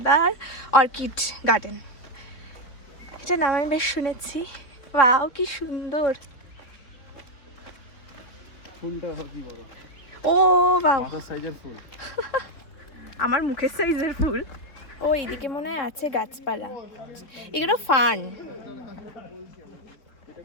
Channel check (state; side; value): late; right; 3.6 ms